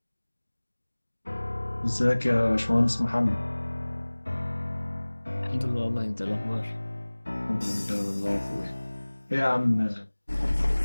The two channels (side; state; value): both; inverted; correlation -1.00